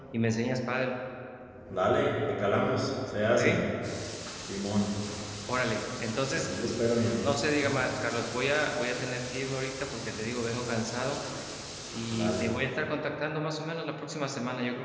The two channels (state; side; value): identical; both; correlation 1.00